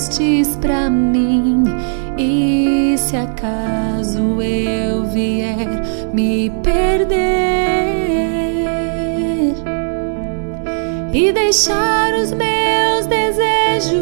pra mim. E se acaso eu vier me perder e deixar os meus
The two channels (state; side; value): silent; left; digital silence